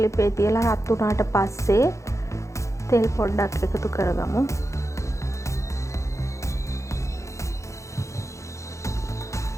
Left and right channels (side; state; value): right; late; 0.15 ms